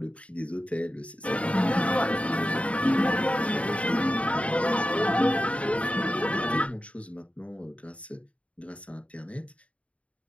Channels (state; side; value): late; right; 0.064 ms